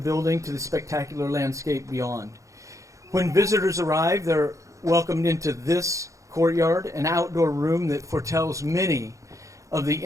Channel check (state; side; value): late; left; 0.15 ms